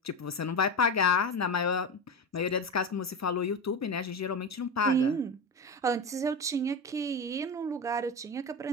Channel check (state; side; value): normal; both; correlation 0.21